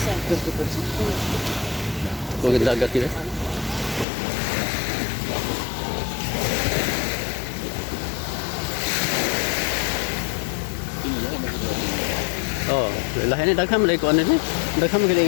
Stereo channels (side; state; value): right; drops out; at 4.0 s